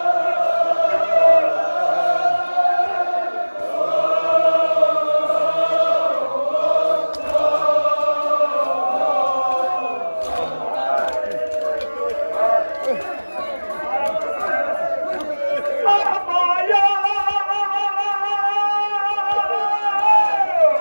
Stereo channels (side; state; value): both; inverted; correlation -1.00